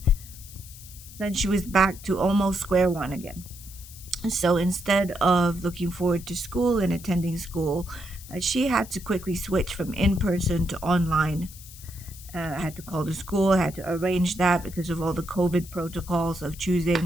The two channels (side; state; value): left; noise; hiss, 17 dB below the sound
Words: then she was back to almost square one again. So instead of looking forward to school and attending school, she had to quickly switch from in person to online. I had to call the school, I had to arrange that because of all the COVID protocols of